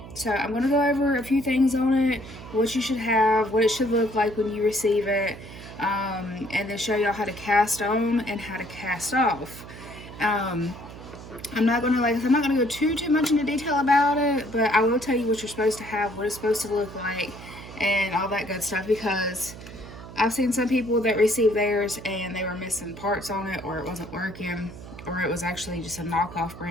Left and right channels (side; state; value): right; noise; hum, 14 dB below the sound